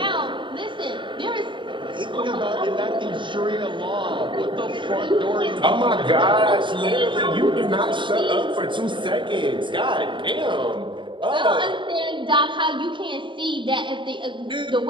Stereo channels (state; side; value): late; left; 0.23 ms